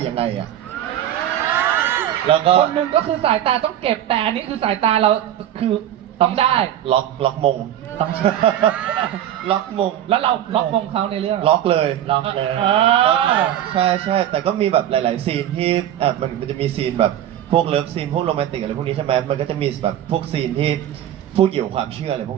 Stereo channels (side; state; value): left; quieter; 11.4 dB